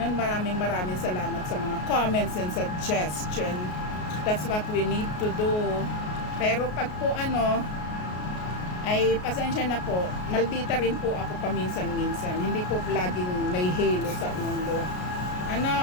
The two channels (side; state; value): right; late; 33 ms